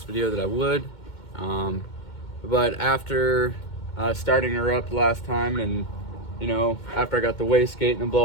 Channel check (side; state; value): right; late; 2.2 ms